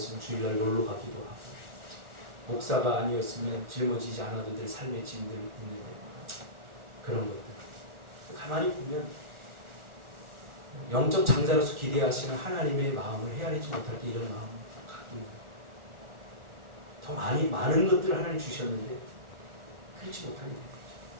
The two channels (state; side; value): late; left; 1.4 ms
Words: 주일날 놀러 가기도 하고, 목사가 아니었으면 짊어지지 않아도 될 삶의 짐들 있는데 그런 것들 가만히 보면 영적 장자로서 기대하시는 하나님의 마음을 헤아리지 못할 때 이런 마음을 갖고 있는 거예요. 더 많은 것들을 하나님 주셨는데 그렇지 못하게 된